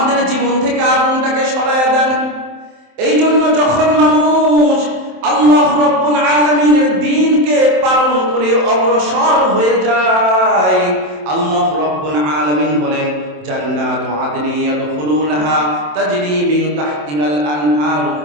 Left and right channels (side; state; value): left; late; 27 ms